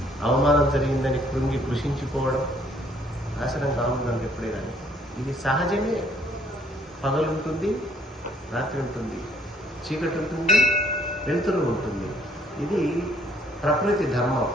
అవమానం జరిగిందని కృషించిపోవడం నాశనం కావుందండి ఎప్పుడే కానీ. ఇది సహజమే. పగలుంటుంది, రాత్రి ఉంటుంది, చీకటి ఉంటుంది, వెలుతురు ఉంటుంది. ఇది ప్రకృతి ధర్మం.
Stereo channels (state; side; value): normal; both; correlation 0.63